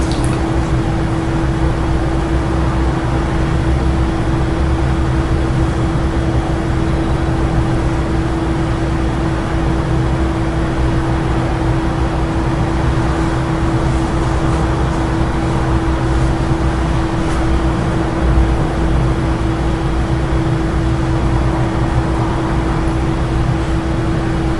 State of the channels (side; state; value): both; identical; correlation 1.00